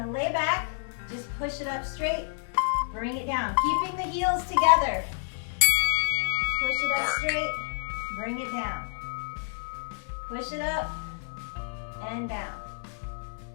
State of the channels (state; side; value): silent; right; digital silence